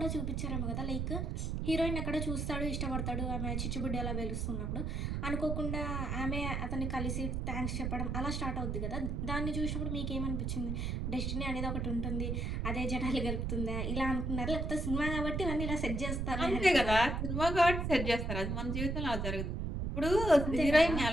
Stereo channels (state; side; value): noise; right; rumble, 1 dB below the sound